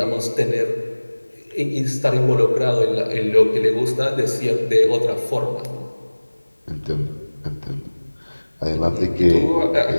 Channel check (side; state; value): both; inverted; correlation -1.00